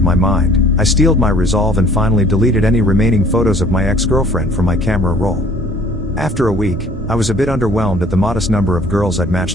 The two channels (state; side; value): normal; both; correlation 0.54